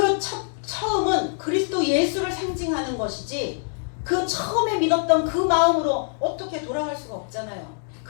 처음은 그리스도 예수를 상징하는 것이지 그 처음에 믿었던 그 마음으로 어떻게 돌아갈 수가 없잖아요.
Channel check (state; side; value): silent; right; 58 dB below the other